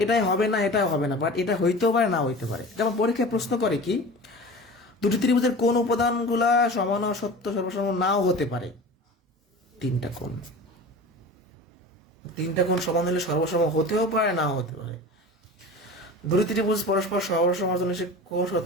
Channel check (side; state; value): both; normal; correlation 0.36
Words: এটাই হবে না, এটাই হবে না, বাট এটা হইতেও পারে, না হইতে পারে। যেমন পরীক্ষায় প্রশ্ন করে কি, দুটি ত্রিভুজের কোন উপাদানগুলা সমান ও সত্য সর্বসম নাও হতে পারে। 3টা কোণ, 3টা কোণ সমান হলে সর্বসম হতেও পারে, নাও হতে পারে। দুটি ত্রিভুজ পরস্পর সর্বসমের জন্য সে কোন